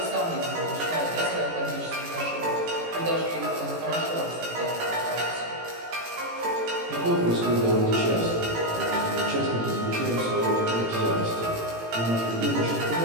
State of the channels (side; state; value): left; late; 18 ms